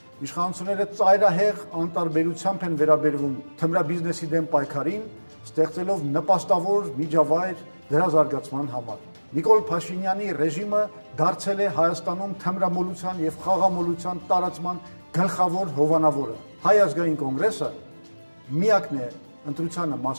Իշխանությունները ծայրահեղ անտարբերությամբ են վերաբերվում թմրաբիզնեսի դեմ պայքարին, ստեղծելով նպաստավոր միջավայր դրա զարգացման համար։ Նիկոլ Փաշինյանի ռեժիմը դարձել է Հայաստանում թմրամոլության եւ խաղամոլության տարածման գլխավոր հովանավորը։ Հայ ազգային կոնգրեսը միակն է ընտրությանը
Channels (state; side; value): inverted; both; correlation -1.00